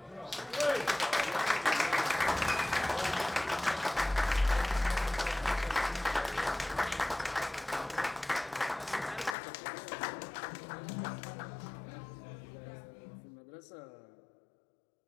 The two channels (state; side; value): drops out; right; at 9.3 s